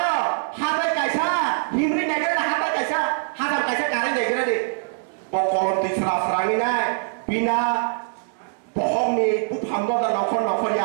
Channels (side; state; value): left; silent; digital silence